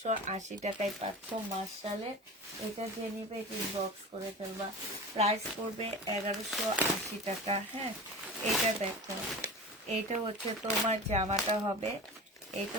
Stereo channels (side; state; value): both; normal; correlation 0.33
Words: টাকায় পাচ্ছ মার্শালের। এটা যে নিবে এটা ইনবক্স করে ফেলবা। প্রাইস পড়বে 1180 টাকা। হ্যাঁ, এটা দেখো, এটা হচ্ছে তোমার জামাটা হবে, এটা